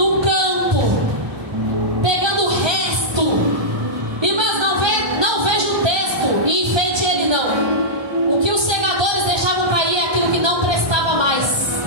campo, pegando o resto. Irmãs, não veja o texto e enfeite ele, não. O que os segadores deixavam cair é aquilo que não prestava mais,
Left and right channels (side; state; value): left; late; 1.2 ms